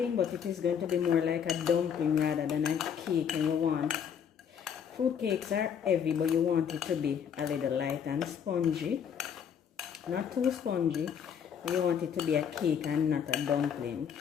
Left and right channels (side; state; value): right; quieter; 7.9 dB